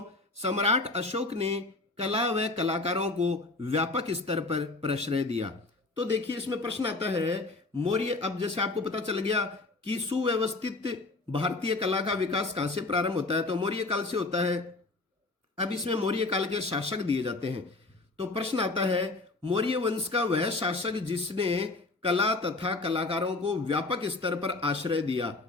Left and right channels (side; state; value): right; quieter; 3.4 dB